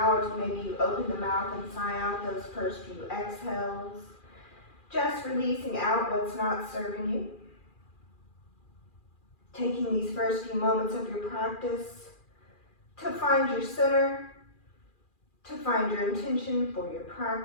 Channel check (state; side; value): late; right; 2.4 ms